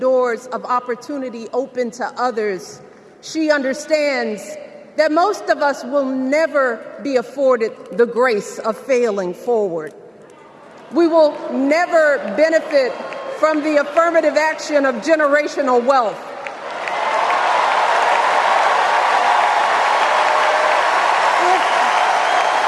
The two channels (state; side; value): identical; both; correlation 1.00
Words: of opportunity open to others. She understands that most of us will never be afforded the grace of failing forward. We will never benefit from the affirmative action of generational wealth.